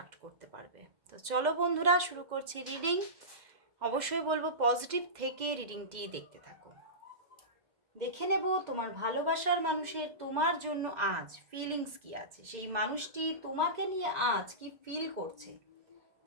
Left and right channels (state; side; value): late; left; 2.1 ms